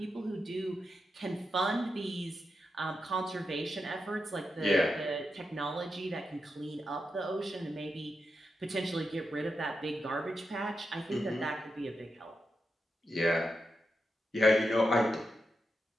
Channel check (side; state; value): both; normal; correlation 0.87